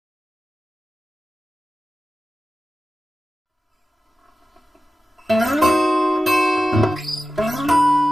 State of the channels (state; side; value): normal; both; correlation 0.94